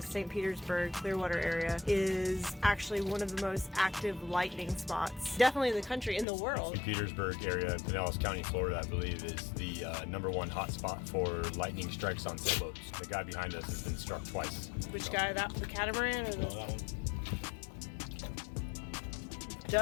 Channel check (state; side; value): drops out; right; at 6.2 s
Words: St. Petersburg, Clearwater area, is actually one of the most active lightning spots, definitely in the country, in the world. St. Petersburg area, Pinellas County, Florida, I believe, is the #1 hotspot for lightning strikes on sailboats. The guy behind us has been struck twice. Which guy? The catamaran or the? No, that one.